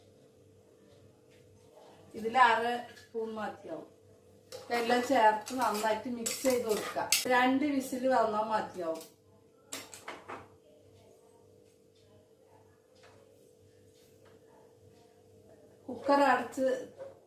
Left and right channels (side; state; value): both; identical; correlation 1.00